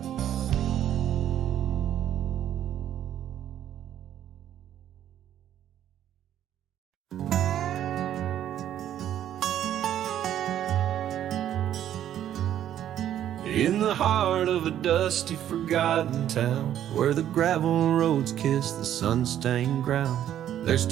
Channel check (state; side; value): quieter; left; 11.0 dB